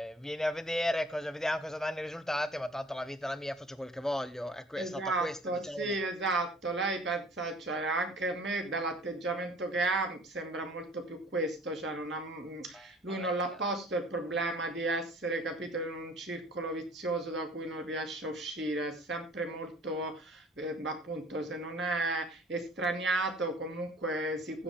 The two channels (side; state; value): both; normal; correlation 0.51